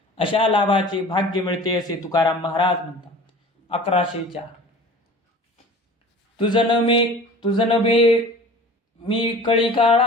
अशा लाभाचे भाग्य मिळते असे तुकाराम महाराज म्हणतात. 1104 तुझन मे मी कळी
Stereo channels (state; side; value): normal; both; correlation 0.42